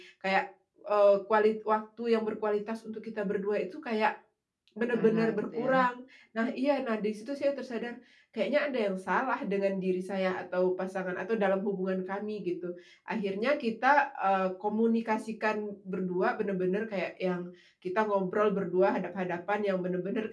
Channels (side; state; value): both; identical; correlation 1.00